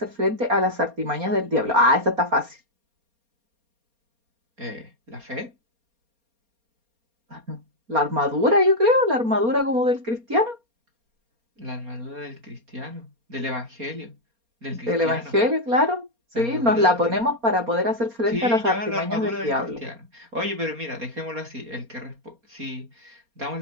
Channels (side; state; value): left; late; 4.3 ms